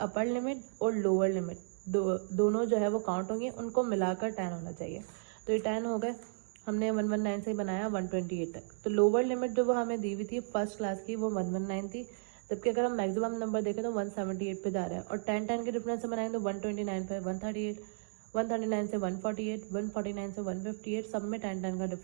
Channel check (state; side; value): silent; left; digital silence